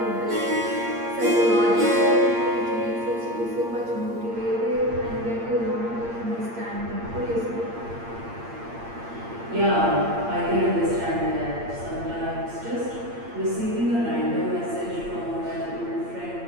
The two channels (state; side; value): late; left; 8.7 ms